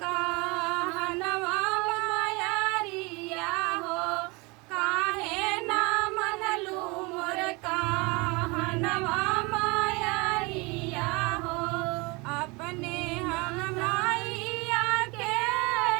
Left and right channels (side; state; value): left; quieter; 26.8 dB